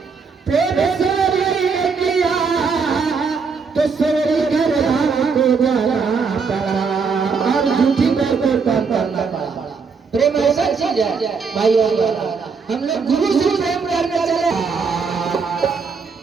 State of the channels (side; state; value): left; quieter; 5.3 dB